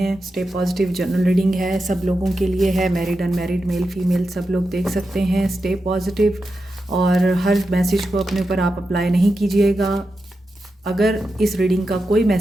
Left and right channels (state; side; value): normal; both; correlation 0.89